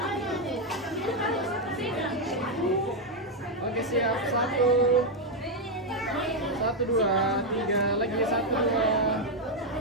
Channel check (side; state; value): both; normal; correlation 0.02